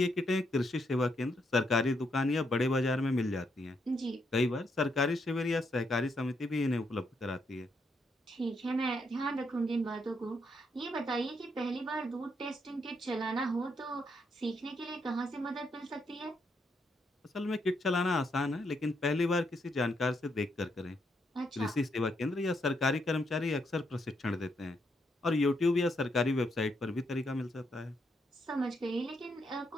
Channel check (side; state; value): both; normal; correlation 0.77